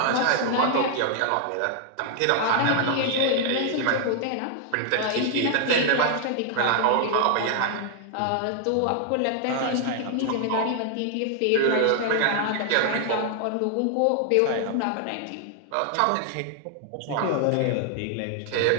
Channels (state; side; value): different; both; correlation 0.00